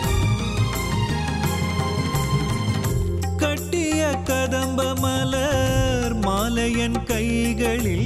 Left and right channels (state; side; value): identical; both; correlation 1.00